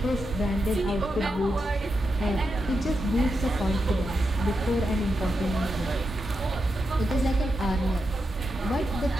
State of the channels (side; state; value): both; normal; correlation 0.86